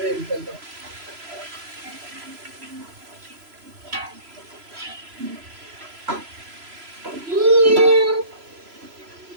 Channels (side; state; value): left; late; 3.0 ms